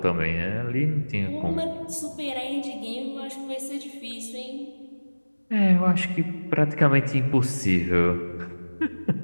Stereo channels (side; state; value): both; inverted; correlation -1.00